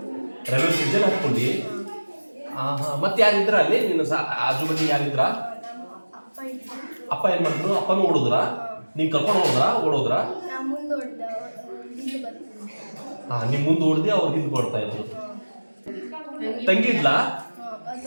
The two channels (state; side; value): inverted; both; correlation -1.00